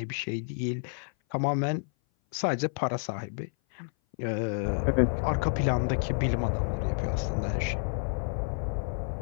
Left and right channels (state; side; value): silent; right; 56 dB below the other